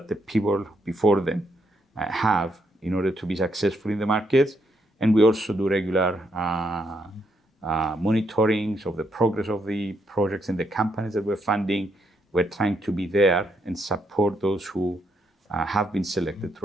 the people before them have in order to be successful in the markets. And we also do regular monitorings of the progress of the projects and the companies that we're funding. We're trying to be there and support those who have been selected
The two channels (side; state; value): both; normal; correlation 0.76